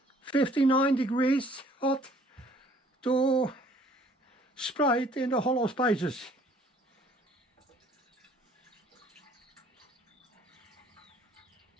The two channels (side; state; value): both; normal; correlation 0.58